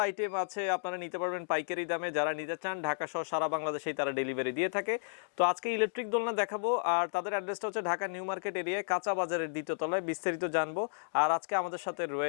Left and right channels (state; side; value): silent; right; digital silence